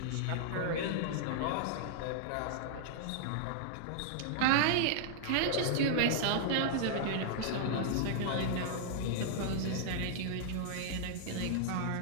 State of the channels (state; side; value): different; both; correlation -0.01